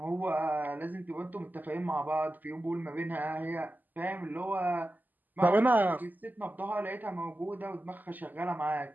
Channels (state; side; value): late; left; 0.085 ms